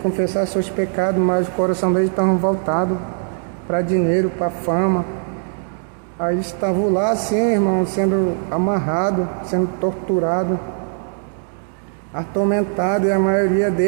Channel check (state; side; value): silent; left; 66 dB below the other